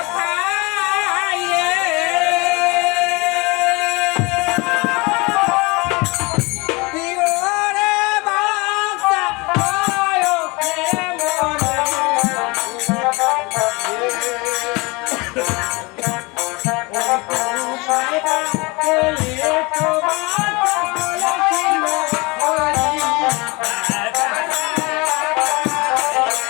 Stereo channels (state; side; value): quieter; right; 26.0 dB